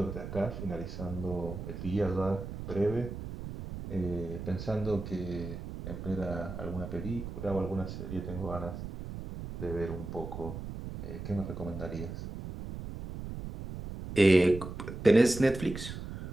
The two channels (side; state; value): right; noise; rumble, 8 dB below the sound